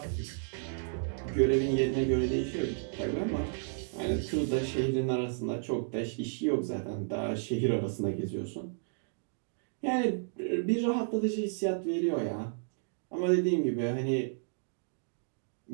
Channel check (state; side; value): silent; left; digital silence